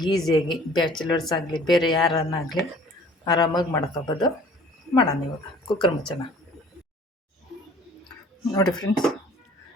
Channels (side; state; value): both; normal; correlation 0.51